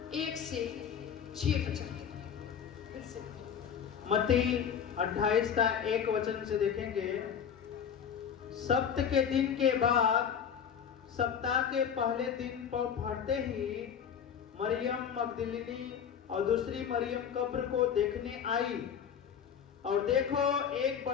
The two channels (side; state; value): right; quieter; 7.9 dB